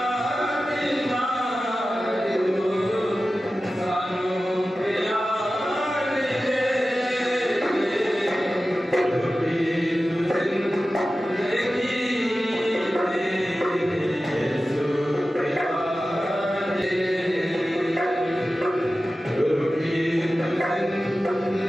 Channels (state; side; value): normal; both; correlation 0.94